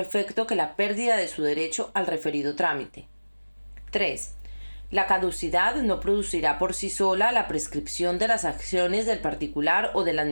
efecto que la pérdida de su derecho al referido trámite. 3. La caducidad no producirá por sí sola la prescripción de las acciones del particular o de la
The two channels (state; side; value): inverted; both; correlation -1.00